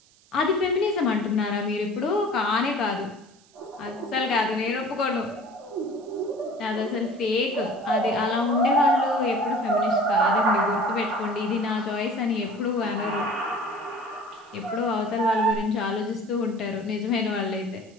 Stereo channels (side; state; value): right; noise; hiss, 29 dB below the sound